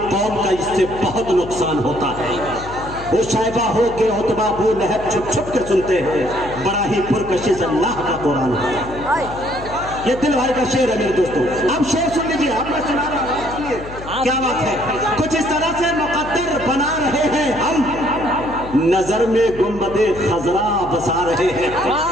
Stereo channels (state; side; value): noise; left; hum, 13 dB below the sound